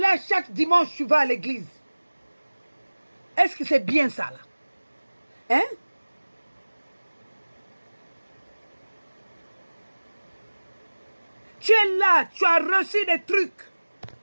chaque dimanche, tu vas à l'église. Est-ce que c'est bien ça là? Hein? Tu es là, tu as reçu des trucs.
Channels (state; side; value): inverted; both; correlation -1.00